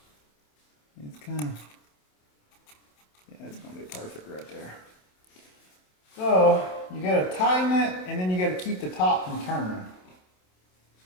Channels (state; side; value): late; right; 27 ms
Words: it's kind of, yeah, it's gonna be perfect right there. So you gotta tighten it, and then you gotta keep the top from turning.